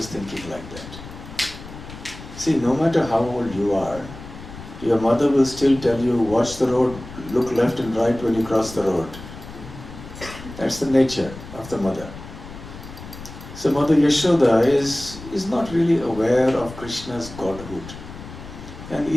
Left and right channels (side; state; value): left; noise; rumble, 14 dB below the sound